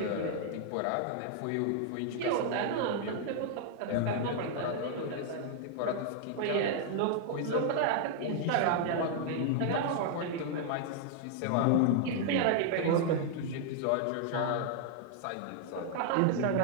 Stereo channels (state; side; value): different; both; correlation -0.01